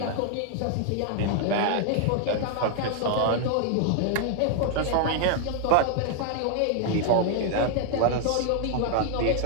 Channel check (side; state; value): both; different; correlation 0.00